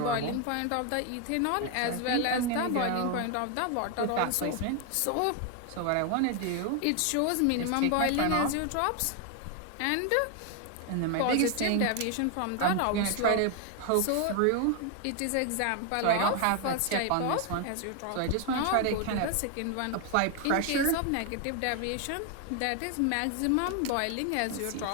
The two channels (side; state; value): both; different; correlation 0.01